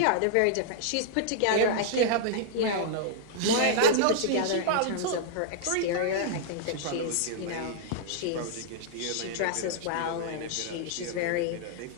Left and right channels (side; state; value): both; different; correlation -0.01